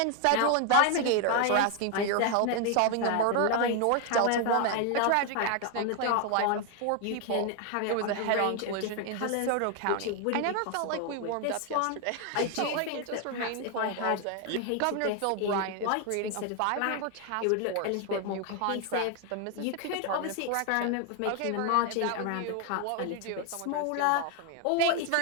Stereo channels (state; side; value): different; both; correlation 0.00